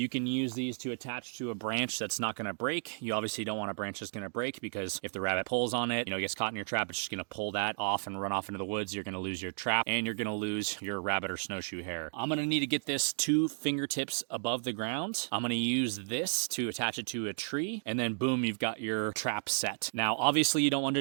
can use these to attach to a branch that's not going to break. You obviously don't want a branch that's going to break, because if the rabbit pulls on it, gets caught in your trap, it's just going to pull that off and run off into the woods. You're going to lose your trap, and you're going to lose your rabbit or snowshoe hare. I'm going to need to get this 2 fingertips above the ground. I'm going to use this to attach it to a tree, and then boom, you've got your trap set. Now, obviously you don't want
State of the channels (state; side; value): silent; left; digital silence